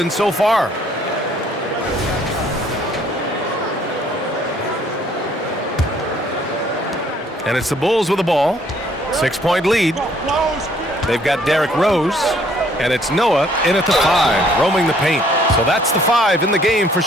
so far. And it's the Bulls with the ball. 6-point lead. They've got Derrick Rose. And it's Noah in at the 5, roaming the paint. So that's the 5 in the game for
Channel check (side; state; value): both; normal; correlation 0.62